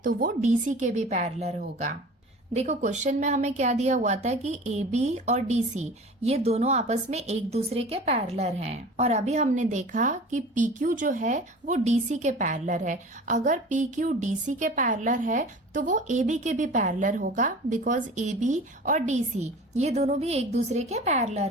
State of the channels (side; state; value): both; normal; correlation 0.40